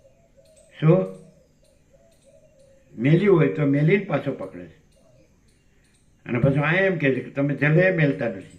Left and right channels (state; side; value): identical; both; correlation 1.00